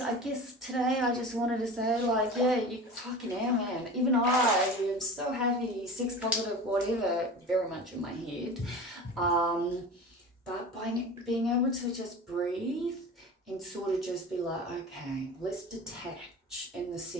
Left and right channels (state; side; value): normal; both; correlation 0.34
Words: I guess today I just wanted to say, like, yeah, you fucking hell, man. Even I am so happy, sex positive, whatever, very much in my head. But by being able to just breathe and sort of just be like, okay, let's detach in the